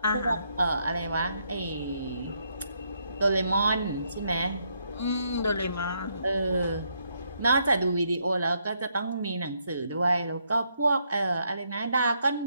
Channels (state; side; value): inverted; both; correlation -0.75